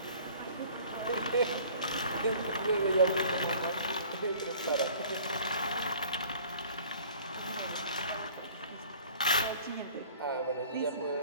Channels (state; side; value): inverted; both; correlation -0.49